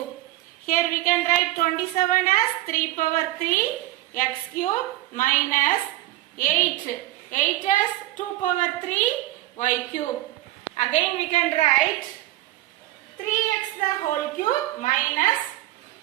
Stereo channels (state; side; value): quieter; left; 16.1 dB